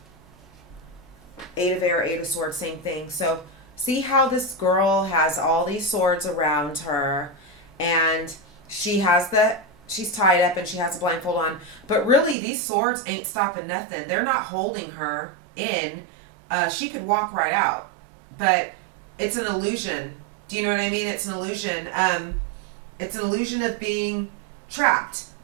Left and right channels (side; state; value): left; drops out; at 12.4 s